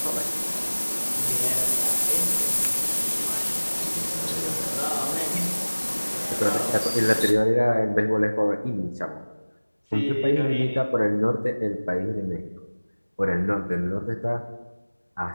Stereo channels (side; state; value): both; inverted; correlation -1.00